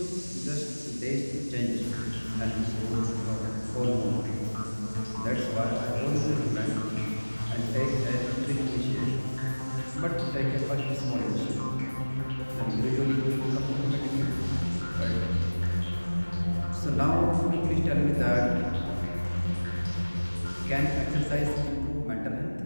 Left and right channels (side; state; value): both; inverted; correlation -1.00